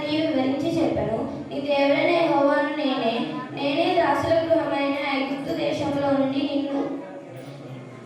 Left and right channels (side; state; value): both; identical; correlation 1.00